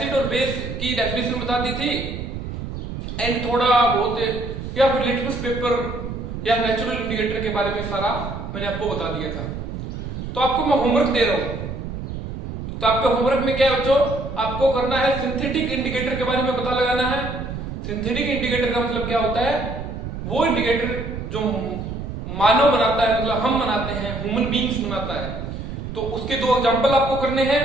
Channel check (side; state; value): right; noise; rumble, 7 dB below the sound